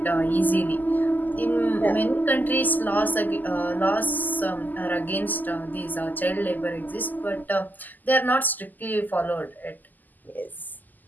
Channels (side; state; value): right; late; 0.084 ms